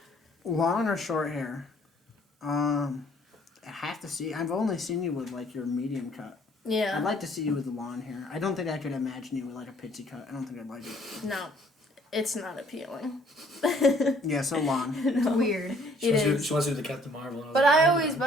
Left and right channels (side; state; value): both; normal; correlation 0.60